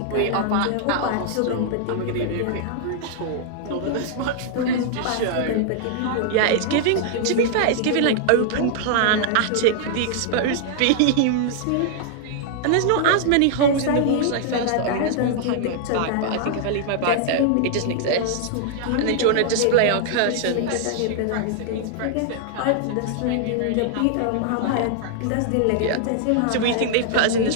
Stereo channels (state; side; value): different; both; correlation -0.01